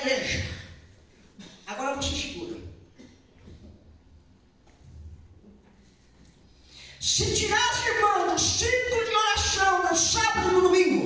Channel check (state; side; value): identical; both; correlation 1.00